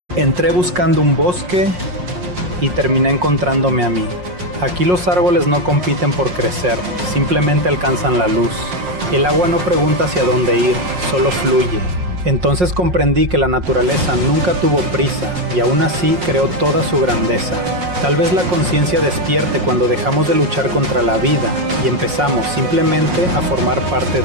Entré buscando un bosque y terminé encontrándome a mí. Aquí los árboles no compiten por crecer, simplemente alcanzan la luz. El agua no pregunta hacia dónde ir, solo fluye. Entonces comprendí que la naturaleza nunca tuvo prisa y aún así creó toda su grandeza. Tal vez la conciencia despierte cuando dejamos de luchar contra la vida y empezamos simplemente a formar parte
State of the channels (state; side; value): late; left; 5.5 ms